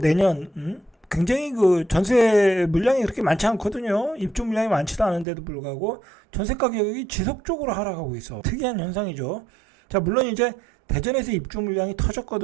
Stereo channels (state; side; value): drops out; left; at 5.2 s